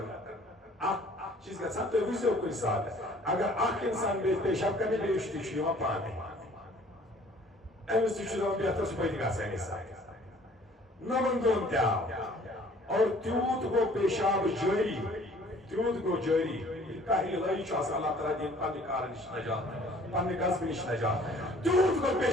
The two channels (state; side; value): normal; both; correlation 0.54